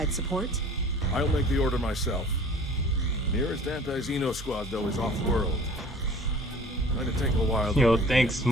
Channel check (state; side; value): normal; both; correlation 0.47